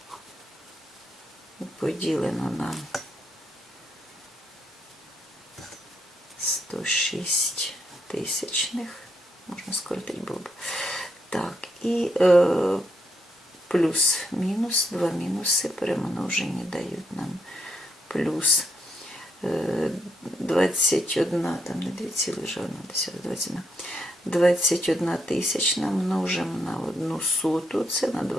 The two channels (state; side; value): normal; both; correlation 0.77